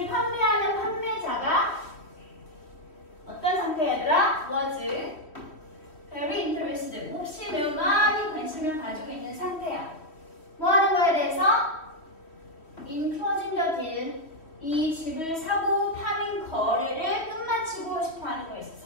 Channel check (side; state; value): right; late; 3.1 ms